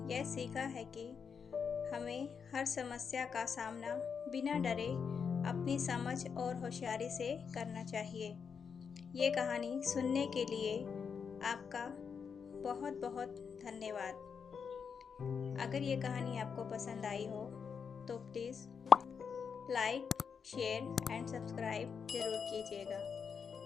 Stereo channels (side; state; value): right; quieter; 6.3 dB